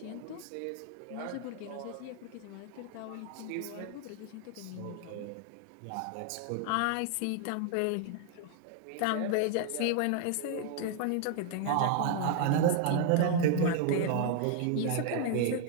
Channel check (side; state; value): both; different; correlation 0.00